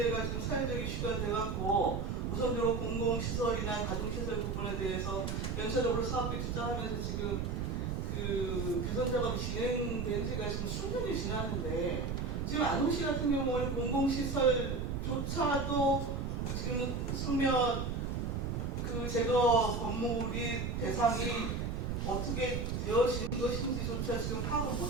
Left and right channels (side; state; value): right; noise; rumble, 2 dB below the sound